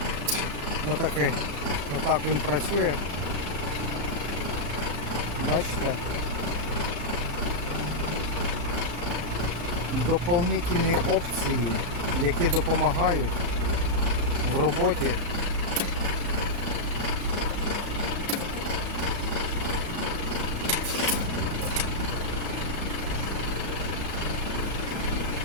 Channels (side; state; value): left; late; 34 ms